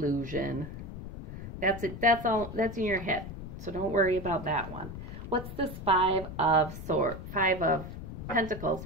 That's it. That's in your head. So don't worry about that one. What's this Five of Pentacles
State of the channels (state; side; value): noise; left; rumble, 10 dB below the sound